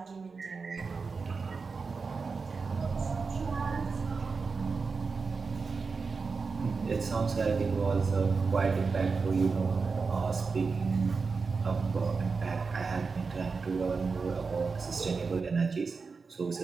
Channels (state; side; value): quieter; left; 4.7 dB